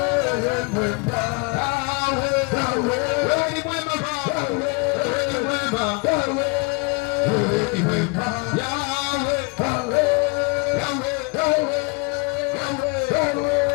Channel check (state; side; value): quieter; right; 30.5 dB